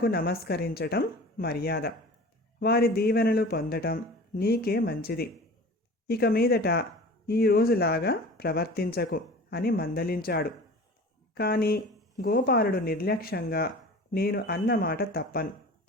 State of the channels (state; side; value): normal; both; correlation 0.39